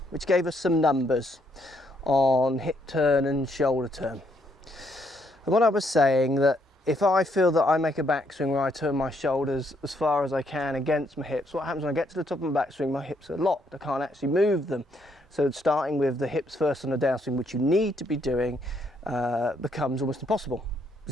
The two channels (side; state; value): both; normal; correlation 0.72